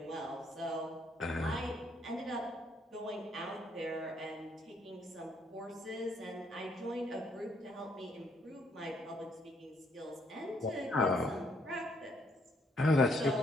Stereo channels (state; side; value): normal; both; correlation 0.69